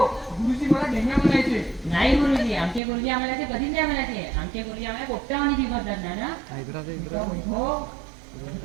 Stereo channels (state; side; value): drops out; left; at 2.8 s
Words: गुरुजी मला ढेंग्या म्हणायचे. नाही गुरुजी, आमचे गुरुजी आम्हाला ते कधीच नाही म्हणायचे. आमचे गुरुजी आम्हाला पोपटावानी शिकवतात नाना.